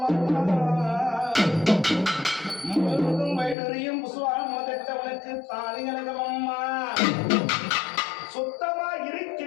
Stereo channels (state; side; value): drops out; right; at 3.6 s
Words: அம்மா முழுவதும் வைடுரியும் புசுவாரம் முதட்ட உனக்கு தாலி அழகும் அம்மா சுத்தமா